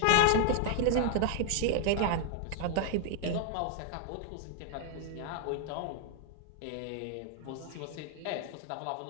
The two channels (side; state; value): both; different; correlation 0.00